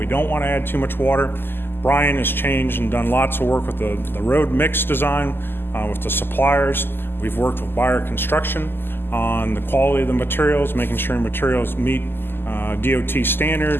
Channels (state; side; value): late; right; 0.10 ms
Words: don't want to add too much water. Brian has changed and done lots of work with the road mix design with the suppliers We've worked with Buyer Construction on the quality of the materials, making sure materials meet DOT